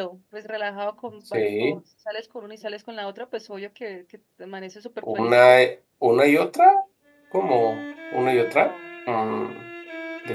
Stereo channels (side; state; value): both; identical; correlation 1.00